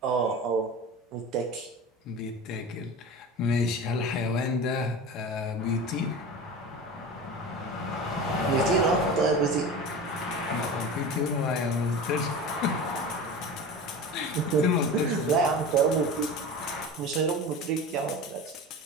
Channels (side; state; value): both; normal; correlation 0.31